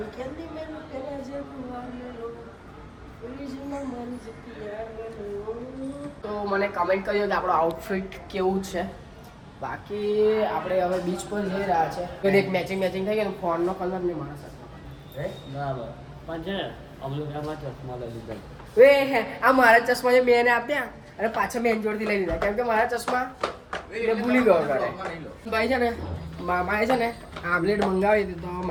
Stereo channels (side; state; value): both; identical; correlation 1.00